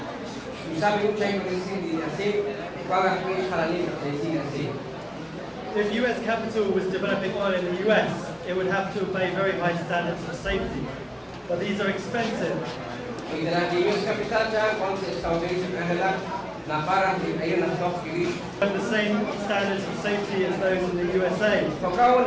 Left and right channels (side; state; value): both; identical; correlation 1.00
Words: If US capital was developing oil in the US, it would have to obey very high standards of safety. But these are expensive. And the same standards of safety as those in the USA.